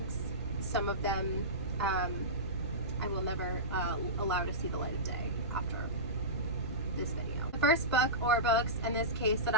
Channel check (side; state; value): both; normal; correlation -0.18